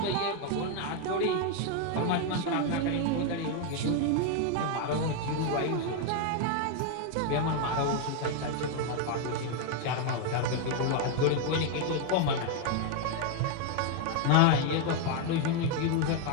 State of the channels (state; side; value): different; both; correlation 0.01